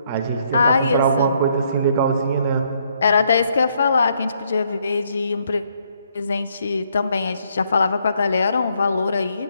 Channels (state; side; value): inverted; both; correlation -0.71